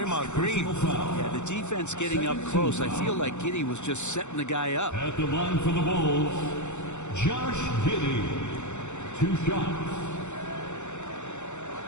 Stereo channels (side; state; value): right; late; 0.83 ms